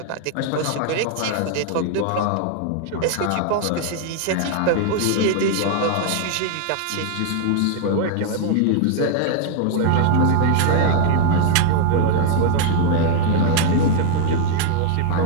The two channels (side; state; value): both; different; correlation 0.00